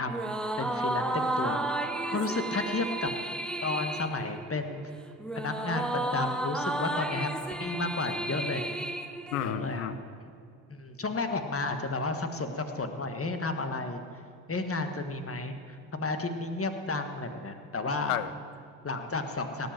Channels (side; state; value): both; normal; correlation 0.33